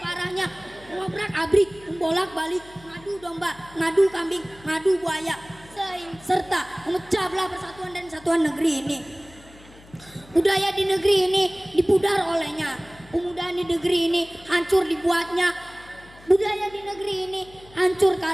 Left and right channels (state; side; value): noise; left; hum, 23 dB below the sound